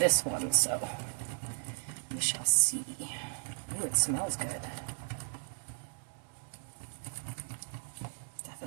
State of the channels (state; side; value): silent; left; digital silence